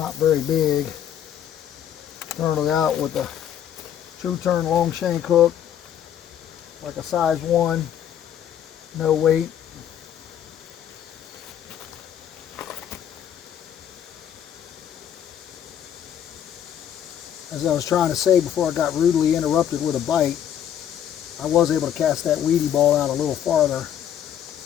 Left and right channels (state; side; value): quieter; right; 9.8 dB